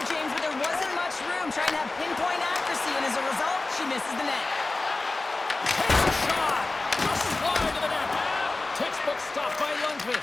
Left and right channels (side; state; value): right; quieter; 3.3 dB